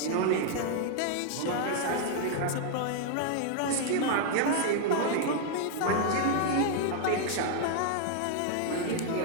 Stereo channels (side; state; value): both; different; correlation 0.00